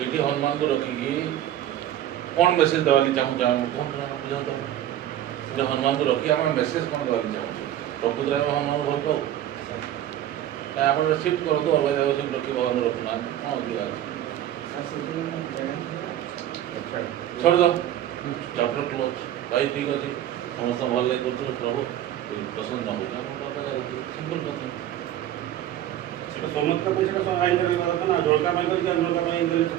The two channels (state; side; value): quieter; left; 12.0 dB